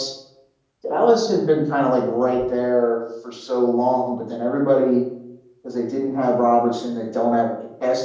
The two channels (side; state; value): both; identical; correlation 1.00